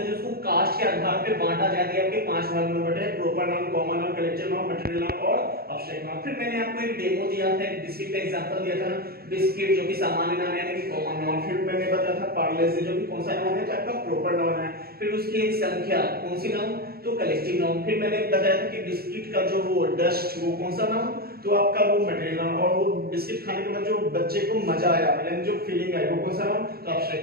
उसको कास्ट के आधार पे बांटा जाए तो आपके 5 भाग में बटे हैं, proper noun, common noun, collective noun, material noun और अब्स्ट्रैक्ट नाउन। फिर मैंने आपको एक डेमो दिया था, एक बिस्किट का एग्जांपल दिया था ना, बिस्किट जो कि सामान्य नाम है यानी कि कॉमन नाउन। फिर मैंने बताया था पार्ले से जो कि कौन सा नाउन है, तो आपका प्रॉपर नाउन है। फिर उसकी एक संख्या कौन सी नाउन, तो कलेक्टिव नाउन। फिर मैंने बताया था कि बिस्किट का जो वो डस्ट वो कौन सा नाउन, तो आपका वो मटेरियल नाउन। और वो बिस्किट खाने के बाद जो बच्चे को मजा आया यानी जो फीलिंग आई वो कौन सा नाउन, तो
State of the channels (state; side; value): late; left; 0.45 ms